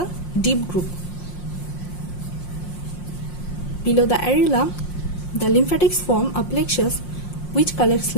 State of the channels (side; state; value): right; late; 5.6 ms